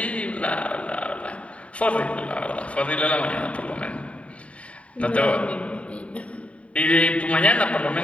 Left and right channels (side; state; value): right; late; 0.064 ms